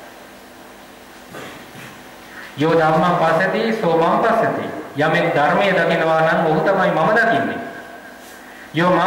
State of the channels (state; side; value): identical; both; correlation 1.00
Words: යෝ ධම්මං පස්සති සෝ මං පස්සති. යමෙක් ධර්මයේ දකිනවා නම් ඔහු තමයි මම දකින්නේ. යෝ